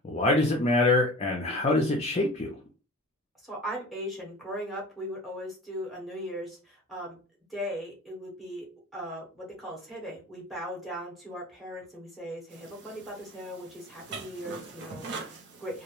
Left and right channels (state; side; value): normal; both; correlation 0.40